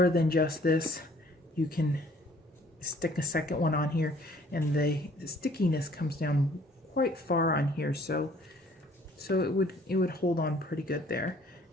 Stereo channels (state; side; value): normal; both; correlation 0.58